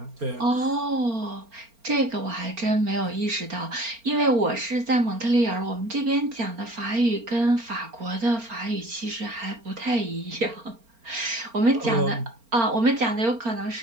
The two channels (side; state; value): left; late; 4.3 ms